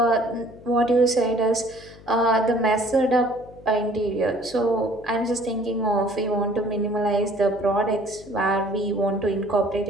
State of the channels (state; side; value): noise; left; hum, 21 dB below the sound